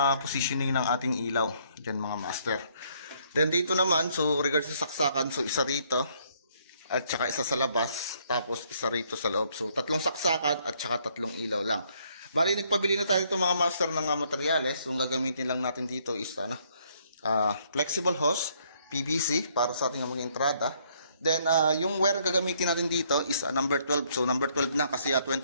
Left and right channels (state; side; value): inverted; both; correlation -0.67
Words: positioning ng ating ilaw. Diyan mga master. Then, dito naman, so, regards sa saksakan, so, isa rito. At saka isa sa labas. Tapos, isa rito sa loob. So, tatlong saksakan at saka tatlong ilaw lang. Bali, nagpabili na tayo itong mga master ng materyales. So, ang gagamitin lang natin dito is, flexible hose, PVC, para sa ating mga entrada. Then, yung wire gagamitin natin dito is number 12. So, number 12 na kasi